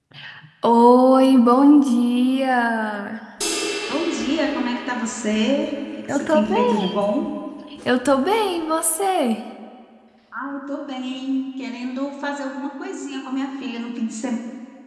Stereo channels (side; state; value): both; identical; correlation 1.00